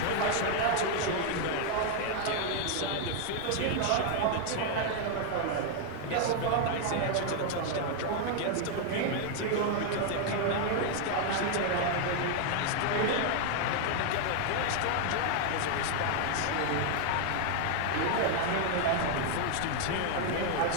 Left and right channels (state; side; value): different; both; correlation 0.00